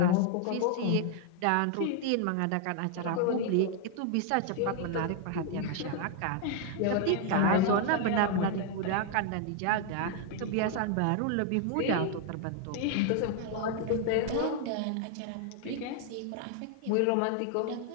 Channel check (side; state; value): both; different; correlation 0.00